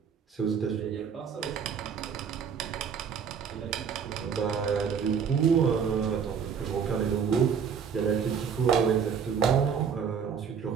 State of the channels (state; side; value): quieter; left; 6.9 dB